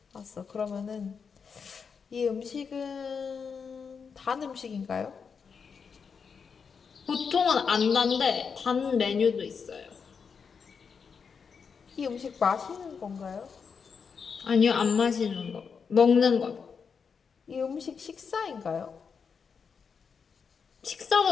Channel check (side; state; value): right; quieter; 6.0 dB